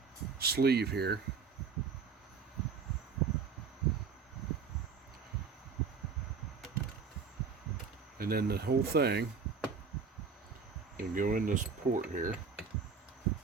sleeve here. And then the whole thing can go in this port here.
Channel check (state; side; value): quieter; left; 5.6 dB